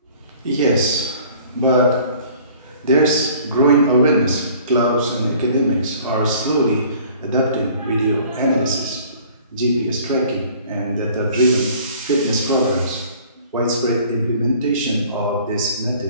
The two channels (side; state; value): both; inverted; correlation -0.51